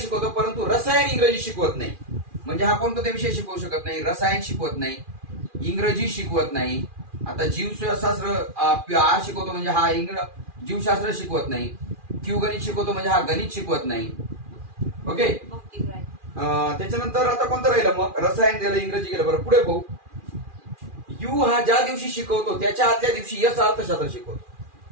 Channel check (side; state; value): left; late; 2.4 ms